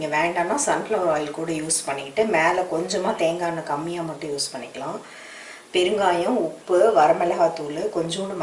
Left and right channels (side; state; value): both; identical; correlation 1.00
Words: வேண்டாம்னா சன்ஃப்ளவர் ஆயில் கூட யூஸ் பண்ணிக்கிட்டு மேலே கொஞ்சமாக தேங்காய் எண்ணெய் கம்மியாக மட்டும் யூஸ் பண்ணிக்கலாம். பெருங்காயம், உப்பு, வரமிளகாத்தூள், கொஞ்சோண்டு